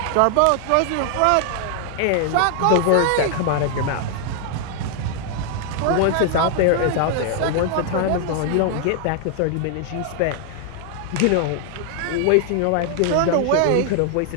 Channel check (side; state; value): both; different; correlation 0.00